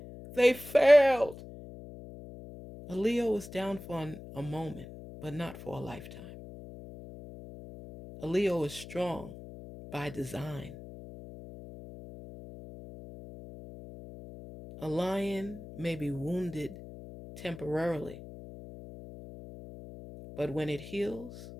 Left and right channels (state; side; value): noise; left; hum, 14 dB below the sound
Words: they failed. A Leo is down for a moment, but not for a lifetime. A Leo is strong by design. A lion may be wounded temporarily, but when it heals,